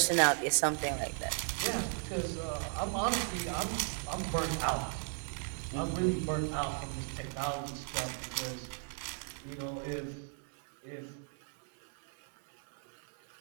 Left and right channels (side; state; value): left; silent; 53 dB below the other